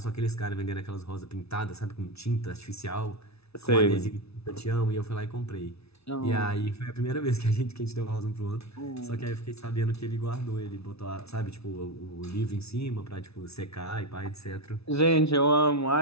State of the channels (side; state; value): right; late; 0.79 ms